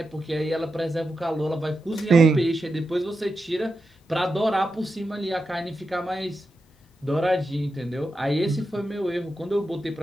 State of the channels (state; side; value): normal; both; correlation 0.89